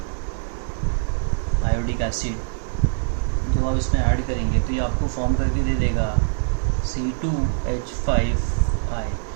iodic acid, जब आप इसमें ऐड करेंगे तो ये आपको फॉर्म करके दे देगा C2H5I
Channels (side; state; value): left; silent; 59 dB below the other